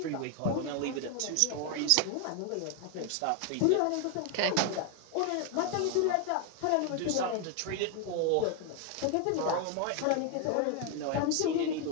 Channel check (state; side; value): different; both; correlation 0.01